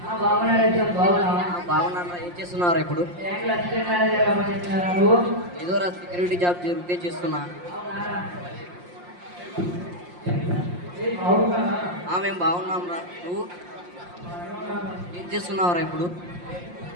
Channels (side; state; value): left; late; 5.7 ms